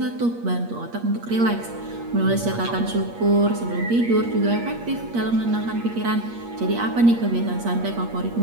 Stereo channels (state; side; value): late; left; 8.5 ms